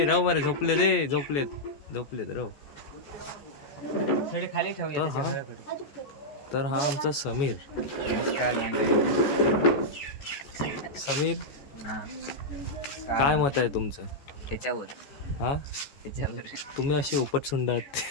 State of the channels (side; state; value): right; late; 14 ms